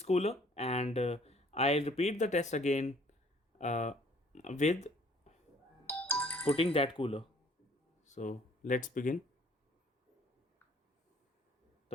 cooler, and I'll repeat the test again uh, with putting that cooler. So let's begin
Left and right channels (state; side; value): normal; both; correlation 0.58